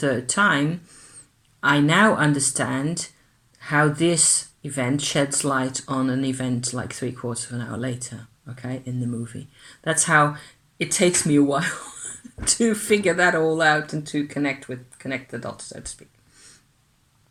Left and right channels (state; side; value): identical; both; correlation 1.00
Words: time, I now understand how this event sheds light on an event like 3/4 of an hour later, okay, in the movie. That's how it takes me a while to figure that all out and to connect the dots, so to speak.